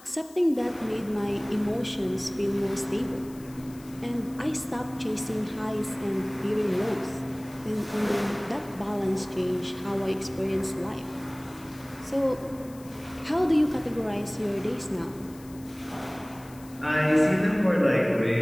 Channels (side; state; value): left; noise; hiss, 23 dB below the sound